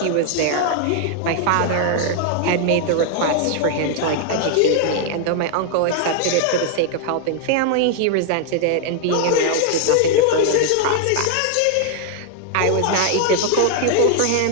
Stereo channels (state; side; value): different; both; correlation 0.00